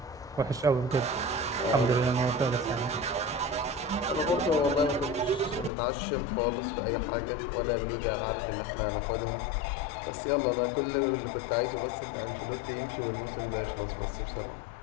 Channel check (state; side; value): drops out; right; at 5.7 s